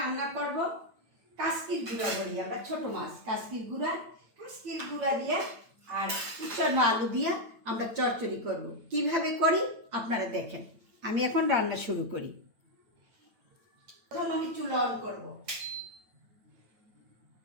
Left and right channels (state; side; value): late; left; 9.0 ms